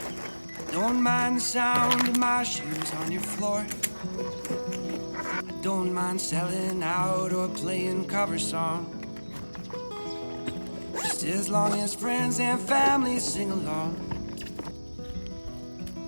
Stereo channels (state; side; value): inverted; both; correlation -1.00